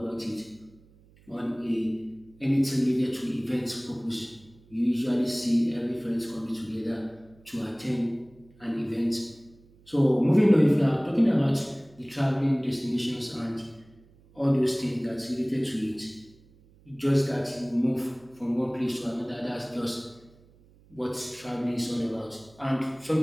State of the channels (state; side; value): noise; right; hum, 28 dB below the sound